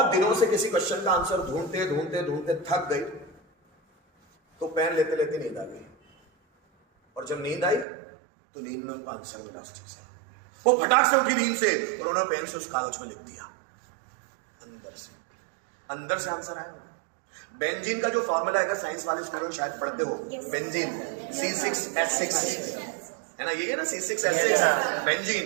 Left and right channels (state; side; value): drops out; left; at 7.9 s